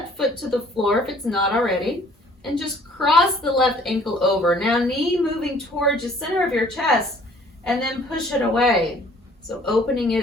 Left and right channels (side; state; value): both; normal; correlation 0.56